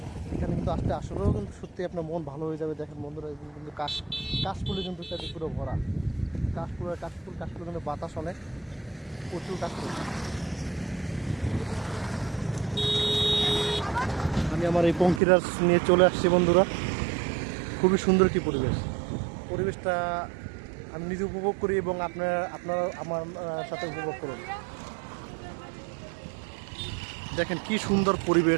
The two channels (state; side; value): drops out; left; at 15.2 s